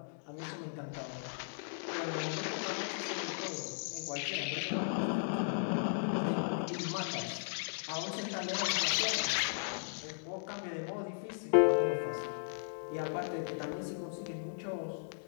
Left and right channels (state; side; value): silent; right; digital silence